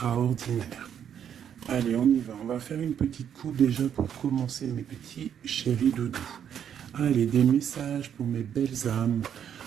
Allez, on y va. On va faire une petite coupe déjà pour commencer, mes petits chéris doudous. Allez, des messages pour mes belles âmes,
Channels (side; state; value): left; quieter; 8.9 dB